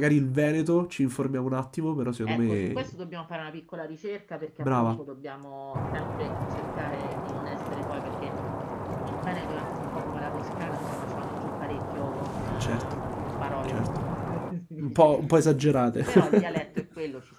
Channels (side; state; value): both; identical; correlation 1.00